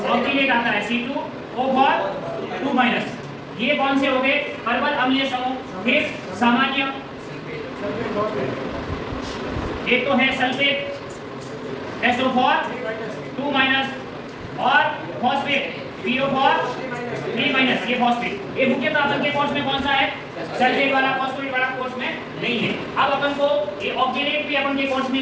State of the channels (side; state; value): both; identical; correlation 1.00